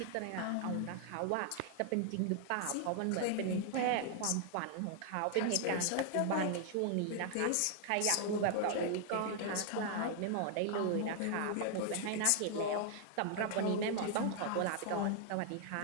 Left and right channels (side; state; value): both; different; correlation 0.00